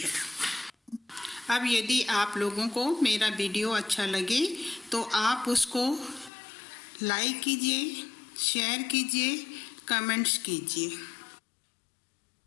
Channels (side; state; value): right; drops out; at 6.3 s